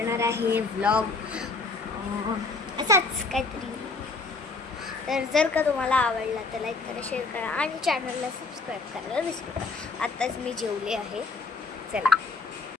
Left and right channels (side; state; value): right; quieter; 3.9 dB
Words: आहे व्लॉग असाच काहीतरी. तर जर का तुम्हाला आवडला तर लाईक करा, शेअर करा आणि चॅनलला सबस्क्राईब करायला विसरू नका. आत्ताच मी जेवले आहे. चला,